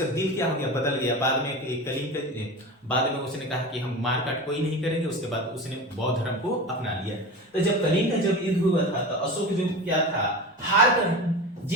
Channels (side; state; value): both; normal; correlation 0.29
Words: दिल क्या हो गया? बदल गया। बाद में कलिंग का बाद में उसने कहा कि हम मार काट कोई नहीं करेंगे। उसके बाद उसने बौद्ध धर्म को अपना लिया। तो जब कलिंग का जब युद्ध हुआ था तो अशोक जो क्या था, हार कर